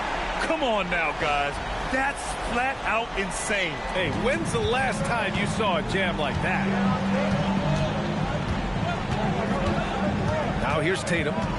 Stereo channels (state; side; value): identical; both; correlation 1.00